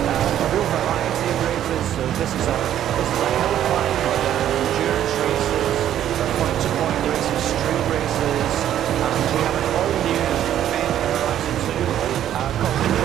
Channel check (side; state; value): left; quieter; 11.1 dB